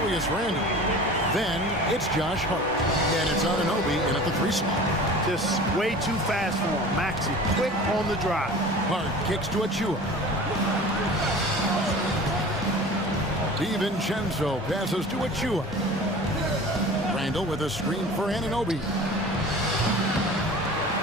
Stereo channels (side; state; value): both; normal; correlation 0.40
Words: Randle. Then it's Josh Hart. And it's Anunoby in at the 3 slot. Just way too fast for him. Maxey quick on the drive. Hart kicks to Achiuwa. DiVincenzo passes to Achiuwa. Randle with a screen for Anunoby.